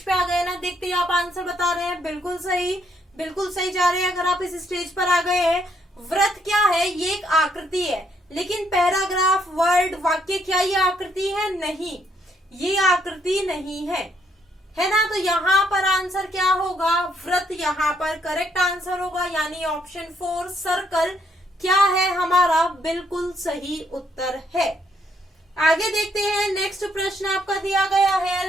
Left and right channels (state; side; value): normal; both; correlation 0.71